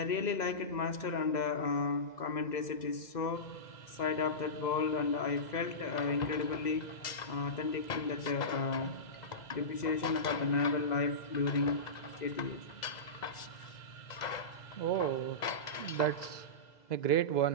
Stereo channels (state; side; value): late; right; 2.0 ms